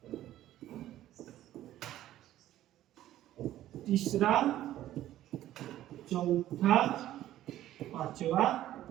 तीसरा चौथा पांचवा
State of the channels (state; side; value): quieter; left; 13.4 dB